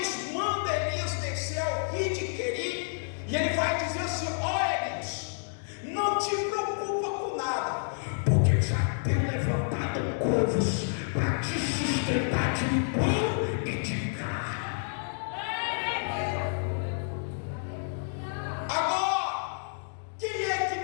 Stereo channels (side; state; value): right; silent; digital silence